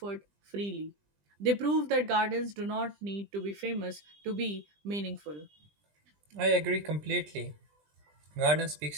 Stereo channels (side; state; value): left; late; 20 ms